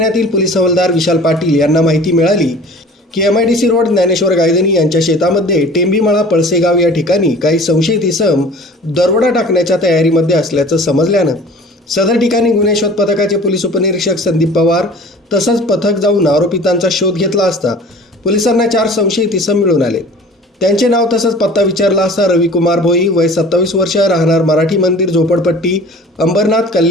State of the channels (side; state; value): both; normal; correlation 0.44